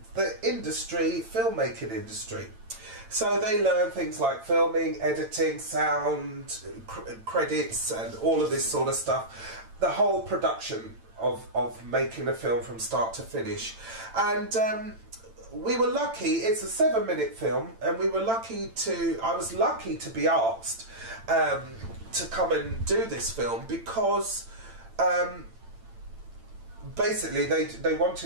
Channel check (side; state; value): left; late; 8.9 ms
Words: the industry, filmmaking industry. So they learn things like filming, editing, sound, credits, and all of this sort of stuff. The whole production of making a film from start to finish. And we were lucky, it's a 7-minute film, and I was lucky to be asked to come and do this film because basically they